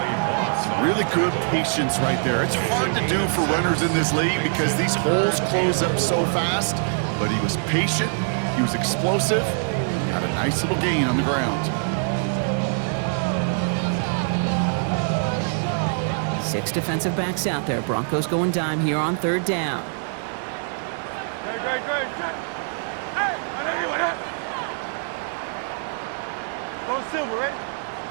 Really good patience right there. It's hard to do for runners in this league because these holes close up so fast, but he was patient, he was explosive, got a nice little gain on the ground. 6 defensive backs out there. Broncos going dime here on 3rd down. Hey, I know you want that. Go Silver, right?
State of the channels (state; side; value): silent; left; 60 dB below the other